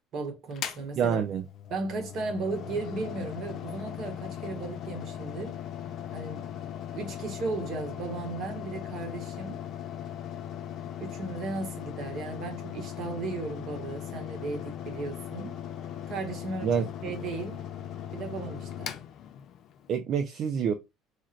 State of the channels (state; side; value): normal; both; correlation 0.53